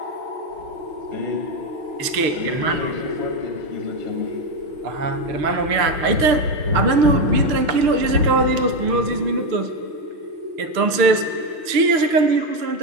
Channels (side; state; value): left; late; 6.6 ms